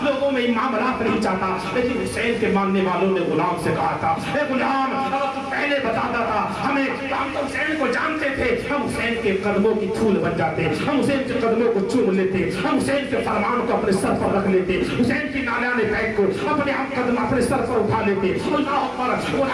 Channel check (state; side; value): identical; both; correlation 1.00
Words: لوگوں میں معاملات نہیں چاہتا۔ لیکن حسین کے ماننے والوں نے غلام سے کہا تھا اے غلام اگر تو پہلے بتاتا تھا ہمیں، ہم تو حسین کو جانتے تھے، ہم حسین کے قدموں کی دھول بن جاتے، ہم حسین کے قدموں کو چوم لیتے، ہم حسین کے فرمان کو اپنے سر پر رکھ لیتے، حسین کی نالیاں بیگ کو اپنے ہم قدم اپنے سر پر اٹھا لیتے۔ اللہ اکبر۔